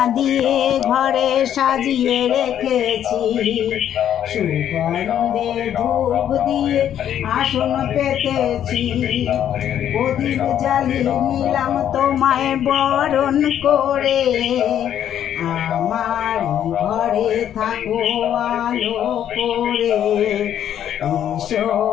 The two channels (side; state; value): right; quieter; 10.2 dB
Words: দিয়ে ঘরে সাজিয়ে রেখেছি, সুগন্ধে ধূপ দিয়ে আসন পেতেছি, প্রদীপ জ্বালিয়ে নিলাম তোমায় বরণ করে, আমার ঘরে থাকো আলো করে, এসো